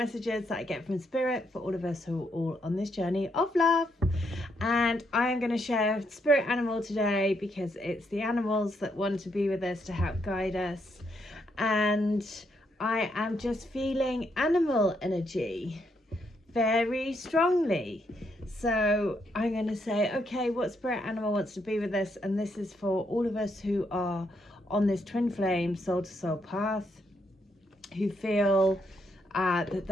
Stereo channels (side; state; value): both; normal; correlation 0.77